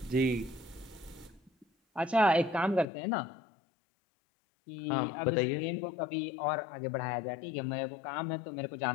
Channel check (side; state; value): right; drops out; at 2.9 s